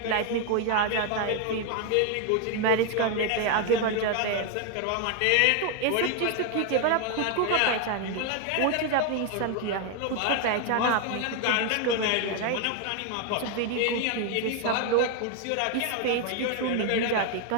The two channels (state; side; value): different; both; correlation 0.01